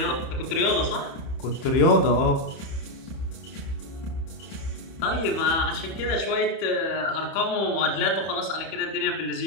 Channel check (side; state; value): right; late; 31 ms